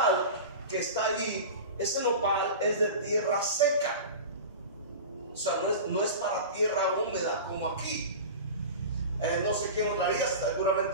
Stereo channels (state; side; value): inverted; both; correlation -0.31